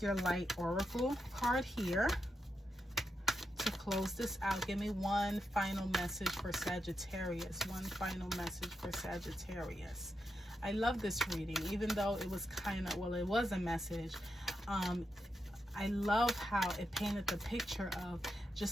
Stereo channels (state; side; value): normal; both; correlation 0.85